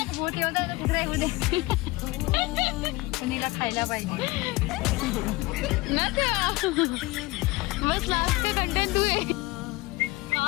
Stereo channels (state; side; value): quieter; right; 21.5 dB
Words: मोठे होता कुत्रा नीला खायला पाहिजे. बस लास्ट कंटेंट तू आहे.